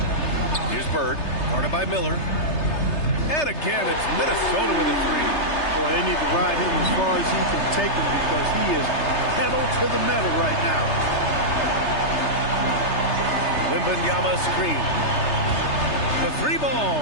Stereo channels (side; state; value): right; late; 3.3 ms